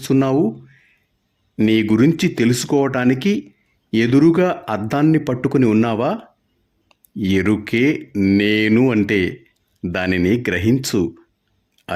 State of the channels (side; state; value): both; identical; correlation 1.00